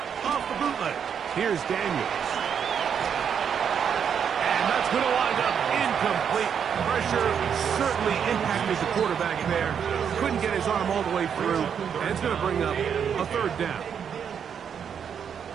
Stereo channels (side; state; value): left; quieter; 7.7 dB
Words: Off the bootleg. Here's Daniels. And that's going to wind up incomplete. Pressure certainly impacted the quarterback there. Couldn't get his arm all the way through. And it's going to bring up a third down.